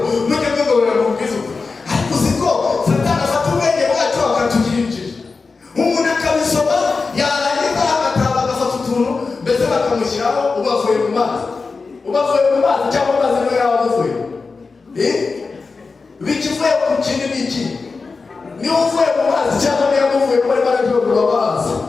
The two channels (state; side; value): quieter; right; 4.3 dB